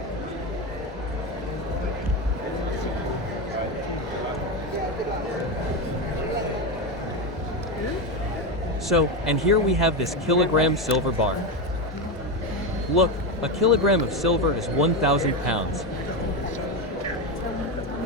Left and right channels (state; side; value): normal; both; correlation 0.14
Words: So, and here we have this kilogram silver bar. Look, a kilogram of silver is 1,000 pounds.